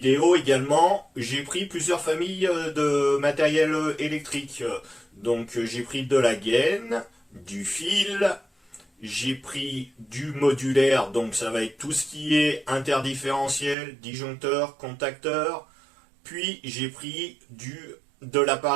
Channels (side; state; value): left; drops out; at 13.8 s